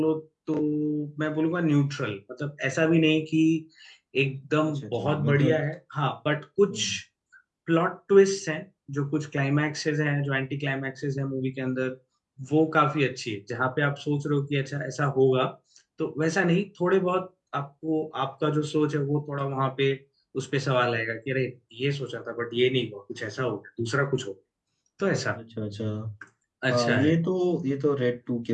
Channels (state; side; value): identical; both; correlation 1.00